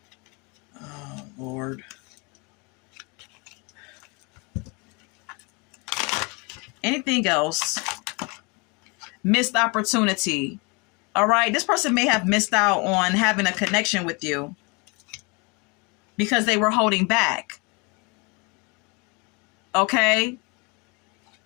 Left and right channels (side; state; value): right; quieter; 30.3 dB